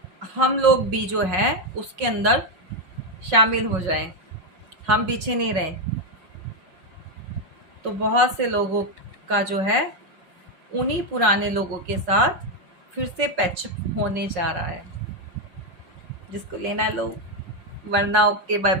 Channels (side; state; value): left; late; 5.5 ms